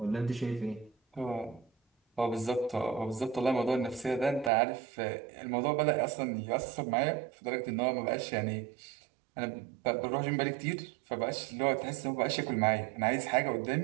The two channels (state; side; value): drops out; left; at 4.5 s